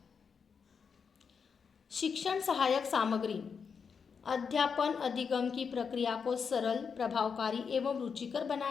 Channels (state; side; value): quieter; right; 6.1 dB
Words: शिक्षण सहायक सामग्री। अध्यापन अधिगम की प्रक्रिया को सरल, प्रभावकारी एवं रुचिकर